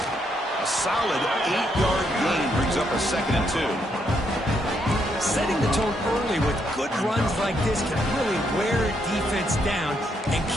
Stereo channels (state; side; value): normal; both; correlation 0.76